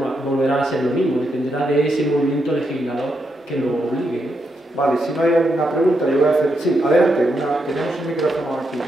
a ser lo mismo, dependerá de ese movimiento legislador que lo obligue. Vale, si no hay alguna pregunta, yo voy a hacer... Sí, adelante, tenemos un micrófono aquí.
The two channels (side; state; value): both; normal; correlation 0.81